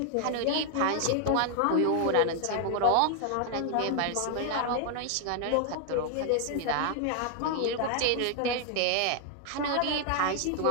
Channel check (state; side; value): different; both; correlation 0.00